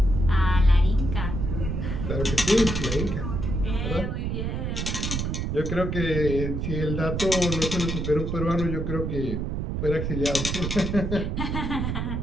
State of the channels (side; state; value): right; noise; rumble, 2 dB below the sound